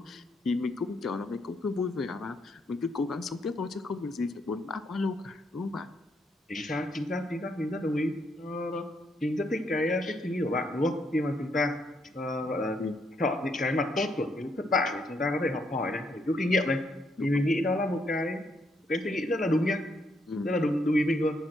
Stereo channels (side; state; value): both; normal; correlation 0.75